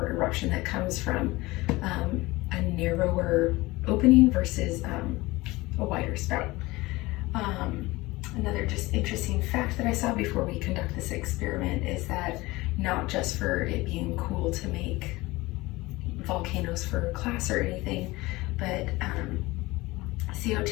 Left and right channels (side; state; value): right; quieter; 20.8 dB